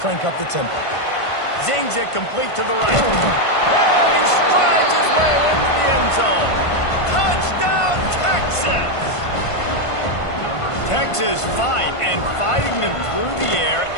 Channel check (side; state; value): right; late; 1.5 ms